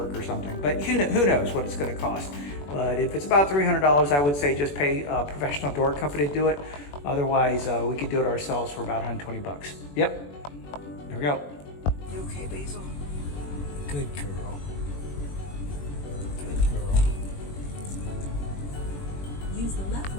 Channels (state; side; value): late; right; 21 ms